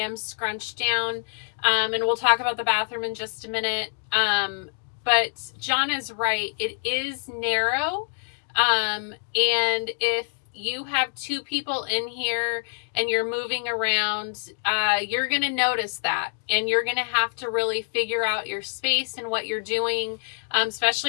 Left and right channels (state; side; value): silent; right; digital silence